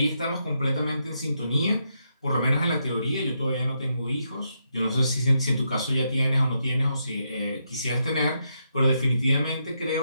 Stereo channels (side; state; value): both; inverted; correlation -0.81